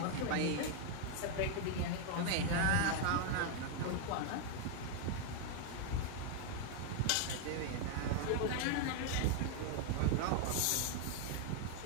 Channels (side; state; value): both; different; correlation 0.00